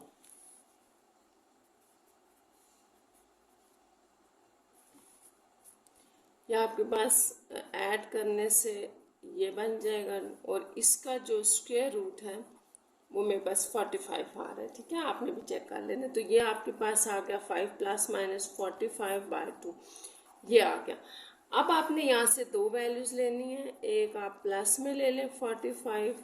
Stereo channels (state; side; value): identical; both; correlation 1.00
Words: ये आपके पास ऐड करने से ये बन जाएगा और इसका जो स्क्वायर रूट है वो मेरे पास 45 आ रहा है, ठीक है, आपने भी चेक कर लेना। तो ये आपके पास आ गया 5 ± 45/2, ये आ गया। अब आपने यहाँ से 2 वैल्यूज लेनी है, एक आप प्लस में ले लें 45